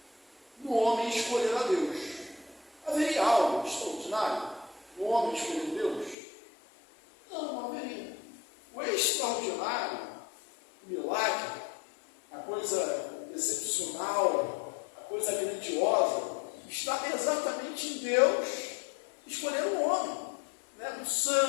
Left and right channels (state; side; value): drops out; right; at 6.2 s